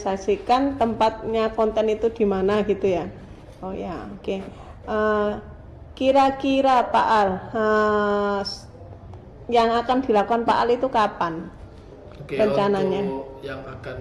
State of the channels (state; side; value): identical; both; correlation 1.00